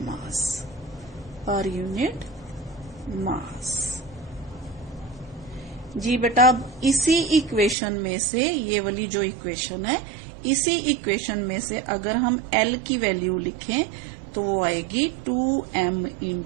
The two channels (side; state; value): left; drops out; at 7.8 s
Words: per unit mass. जी बेटा, अब इसी इक्वेशन में से, ये वाली जो इक्वेशन है, इसी इक्वेशन में से अगर हम L की वैल्यू लिखें तो वो आएगी 2m